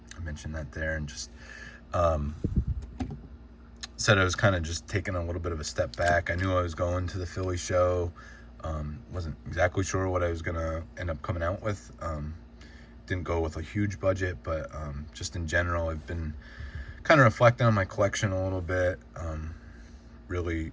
mentioned that there, and just said I was kind of just taking a little bit of a step back. I knew I was going to the Philly show. Wasn't exactly sure what I was gonna end up coming out with. Didn't go with a huge budget, but just in general, I've been kind of reflecting on my collection a little bit. Really,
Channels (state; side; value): identical; both; correlation 1.00